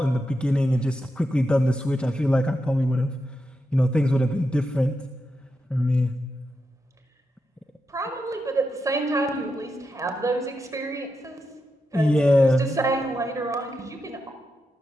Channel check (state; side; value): normal; both; correlation 0.86